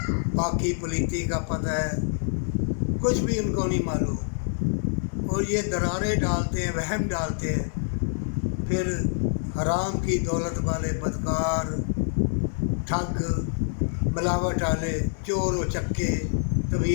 پاکی پلیتی کا پتہ ہے، کچھ بھی ان کو نہیں معلوم، اور یہ درارے ڈالتے ہیں، وہم ڈالتے ہیں، پھر حرام کی دولت والے بدکار، ٹھگ، ملاوٹ والے، چور و چکے،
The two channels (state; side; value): silent; right; 60 dB below the other